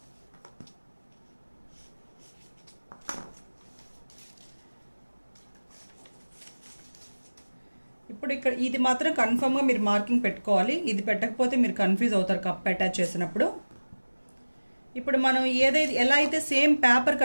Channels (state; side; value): inverted; both; correlation -1.00